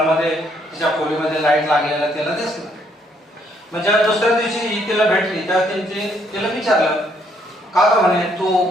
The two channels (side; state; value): both; normal; correlation 0.70